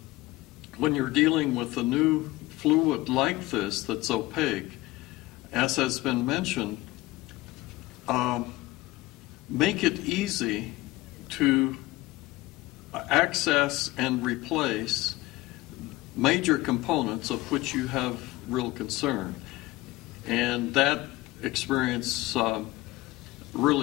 when you're dealing with a new fluid like this that's opaque, as has been mentioned, make it easy to access and replace major components of which you have real concern. And that experience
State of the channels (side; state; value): right; quieter; 19.2 dB